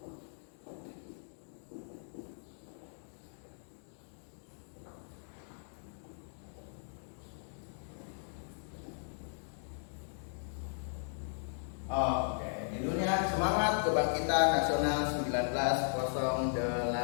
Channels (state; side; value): silent; right; digital silence